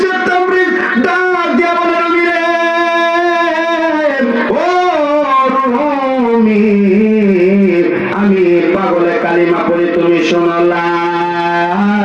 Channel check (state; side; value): identical; both; correlation 1.00